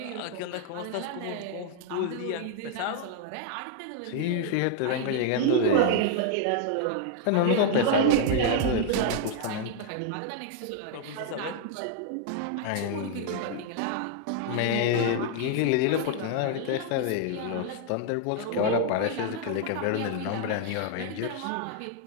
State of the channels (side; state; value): both; different; correlation 0.00